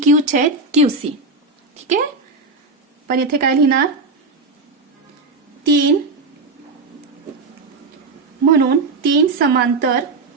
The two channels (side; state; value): left; quieter; 3.6 dB